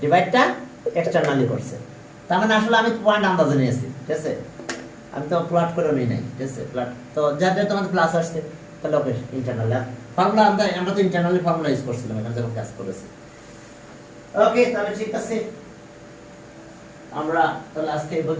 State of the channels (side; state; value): both; identical; correlation 1.00